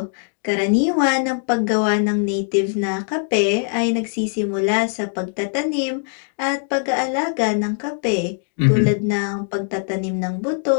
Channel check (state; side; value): silent; right; 65 dB below the other